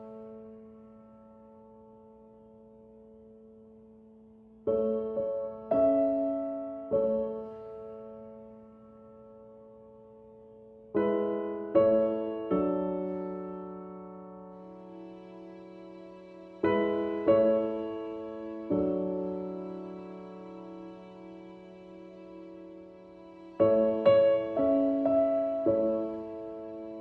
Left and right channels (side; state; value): both; identical; correlation 1.00